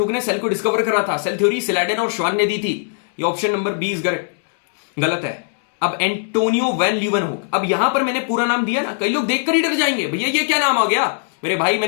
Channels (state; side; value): silent; right; digital silence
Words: ने सेल को डिस्कवर करा था। सेल थ्योरी सिलाडेन और श्वान ने दी थी। ये option number B is correct, गलत है। अब एंटोनियो वैन लीवनहुक। अब यहां पर मैंने पूरा नाम दिया ना, कई लोग देखकर ही डर जाएंगे, भैया ये क्या नाम आ गया मेरे भाई।